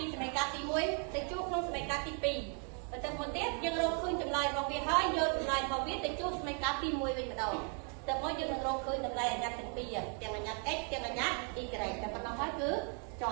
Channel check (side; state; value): left; quieter; 37.4 dB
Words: ីសមីការទី1ទៅជួបក្នុងសមីការទី2ទៅទៅមុនទៀតយើងរកឃើញចម្លើយរបស់វាហើយយកចម្លើយរបស់វាទៅជួបសមីការទី1វិញម្ដងតែមកយើងនឹងរកឃើញតម្លៃអញ្ញត្តិទាំងពីរទាំងអញ្ញត្តិ x ទាំងអញ្ញត្តិ y តែប៉ុណ្ណោះហើយគឺជ